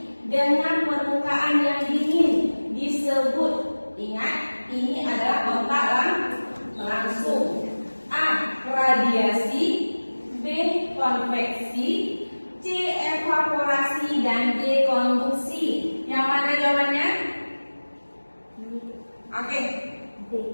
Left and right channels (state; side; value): inverted; both; correlation -1.00